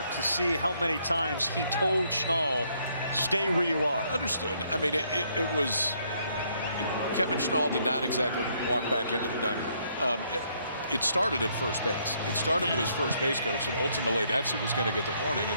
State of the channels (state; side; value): inverted; both; correlation -0.70